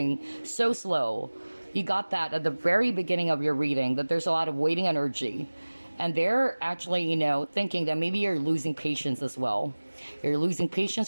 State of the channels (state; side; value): inverted; both; correlation -1.00